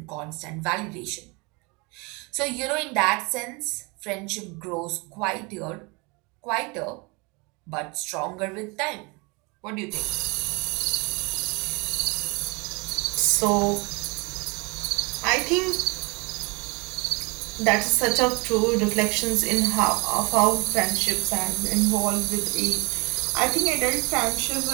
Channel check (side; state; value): left; quieter; 28.6 dB